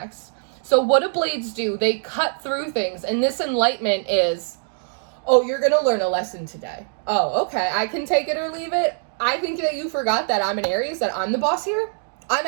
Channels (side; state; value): left; silent; digital silence